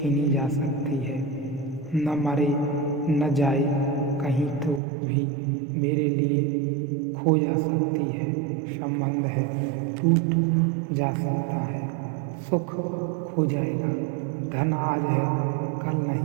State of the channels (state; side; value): drops out; left; at 4.8 s